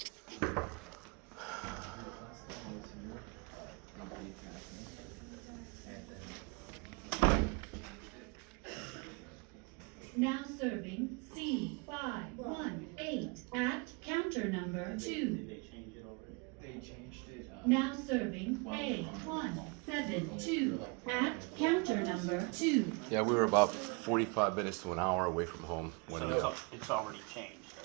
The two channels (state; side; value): quieter; left; 31.1 dB